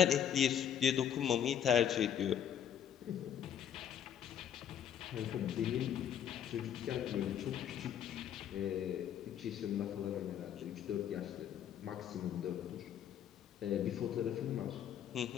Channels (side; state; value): right; quieter; 9.4 dB